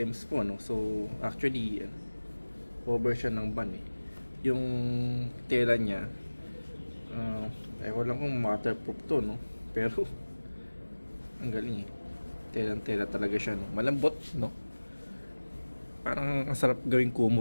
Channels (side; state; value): both; inverted; correlation -1.00